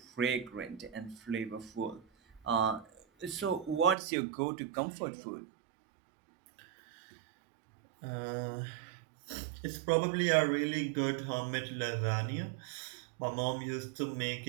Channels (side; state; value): left; drops out; at 4.0 s